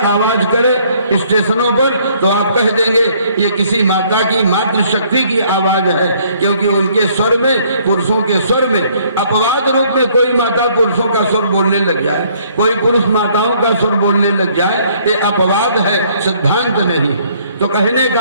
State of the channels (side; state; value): both; inverted; correlation -0.62